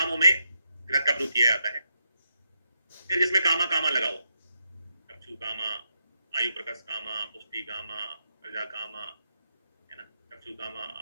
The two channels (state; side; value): inverted; both; correlation -0.83